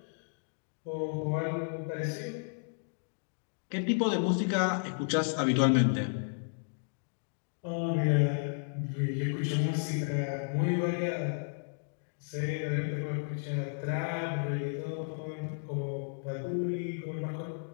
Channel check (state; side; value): silent; right; digital silence